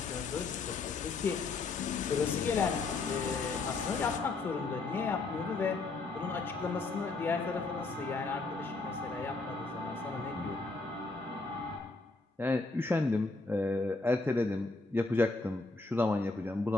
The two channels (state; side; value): quieter; right; 3.6 dB